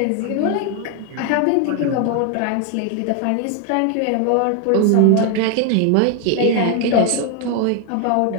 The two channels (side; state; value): both; different; correlation 0.01